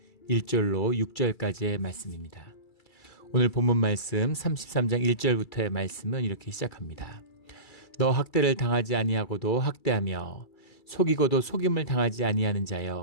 1절로 6절까지의 말씀입니다. 오늘 본문 말씀 33장 1절부터의 말씀은 이렇게 시작합니다. 너 학대를 당하지 아니하고도 학대하며 속이고도 속임을 당하지 아니하는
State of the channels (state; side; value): late; right; 2.3 ms